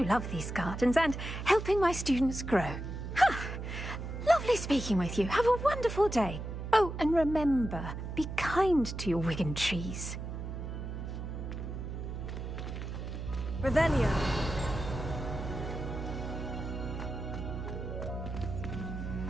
love these gardens and helping my students grow. Lovely speaking with you. Have a wonderful day. Oh, and remember, be kind to your Wigan trees. Revelio.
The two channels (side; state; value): right; noise; hum, 6 dB below the sound